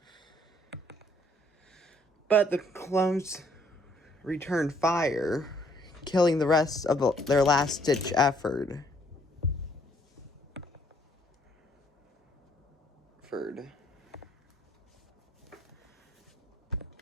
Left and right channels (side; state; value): both; normal; correlation 0.65